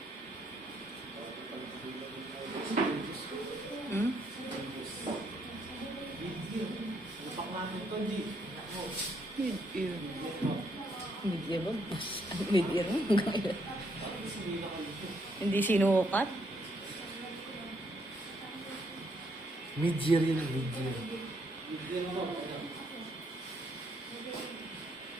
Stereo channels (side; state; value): both; normal; correlation 0.73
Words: Hmm? Mid-ear. Mid-ear ba? Mid-ear mo? Hindi sinukat? Mid-year yun, mid-year.